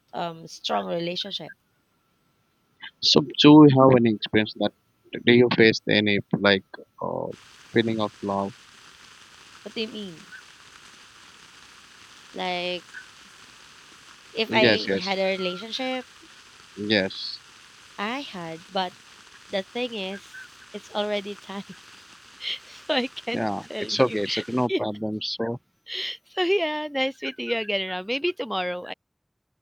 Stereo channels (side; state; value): both; identical; correlation 1.00